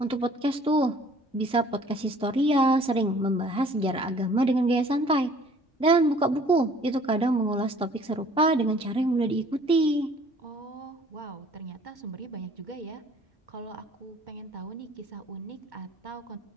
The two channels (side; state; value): both; normal; correlation 0.54